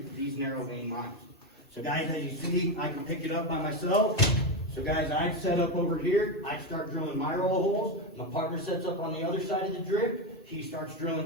for these narrow vein mines. So guys, as you see, I can pick it up by myself. So guys, I'd set up over here, I'd start drilling my roll of holes, my partner sets up on the other side of the drip, he starts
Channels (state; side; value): normal; both; correlation 0.12